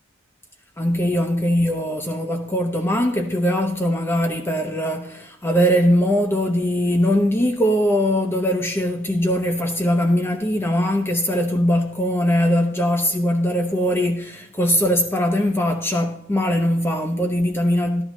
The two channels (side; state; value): both; normal; correlation 0.74